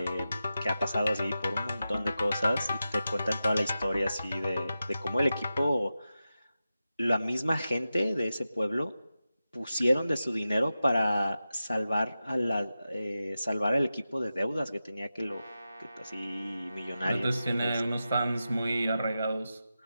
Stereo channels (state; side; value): inverted; both; correlation -0.92